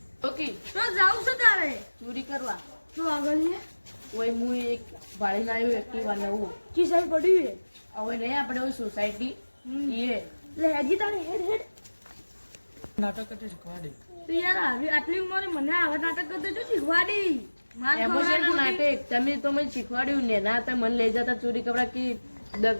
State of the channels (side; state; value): both; inverted; correlation -1.00